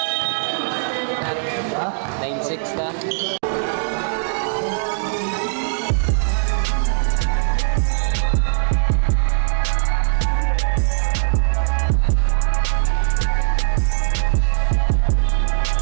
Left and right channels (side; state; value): left; silent; digital silence